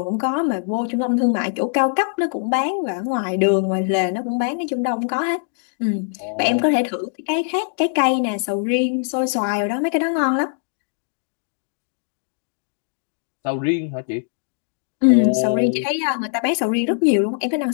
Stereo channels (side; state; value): right; silent; digital silence